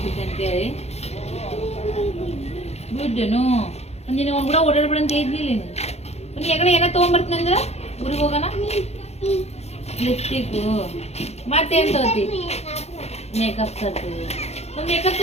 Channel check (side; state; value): right; late; 0.31 ms